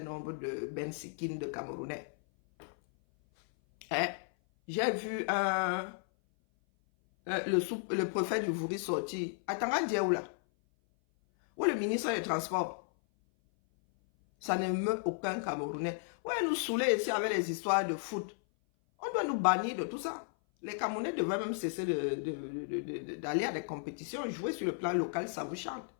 de Bensikines de Camerounais. Hein? J'ai vu le préfet du Vouri sortir. Attends, Dieu là. Où le ministre des Transports? Ça ne meut aucun Camerounais. Ouais, nous saouler ici avec les histoires de foot. On doit nous bannir de tout ça. Les Camerounais devraient même cesser d'aller à des compétitions, jouer sur le plan local, ça vous chante.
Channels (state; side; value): silent; right; 55 dB below the other